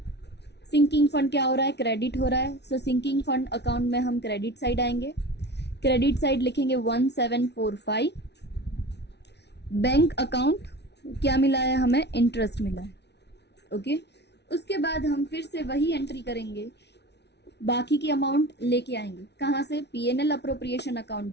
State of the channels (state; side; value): late; right; 0.50 ms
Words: सिंकिंग फंड क्या हो रहा है, क्रेडिट हो रहा है, सो सिंकिंग फंड अकाउंट में हम क्रेडिट साइड आएंगे, क्रेडिट साइड लिखेंगे 1745। बैंक अकाउंट क्या मिला है हमें, इंटरेस्ट मिला है। ओके, उसके बाद हम फिर से वही एंट्री करेंगे, बाकी की अमाउंट लेके आएंगे कहाँ से, PNL appropriation account